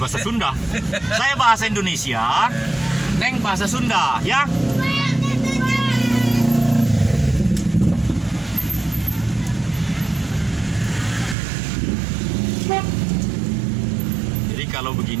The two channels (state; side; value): drops out; left; at 11.4 s